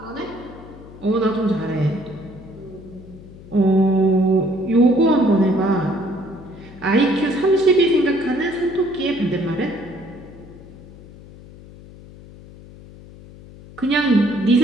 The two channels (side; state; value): left; noise; hum, 19 dB below the sound